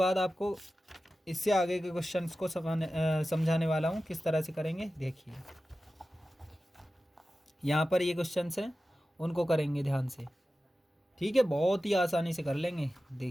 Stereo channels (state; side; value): normal; both; correlation 0.94